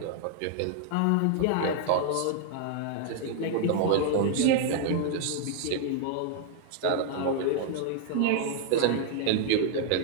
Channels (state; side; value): different; both; correlation 0.00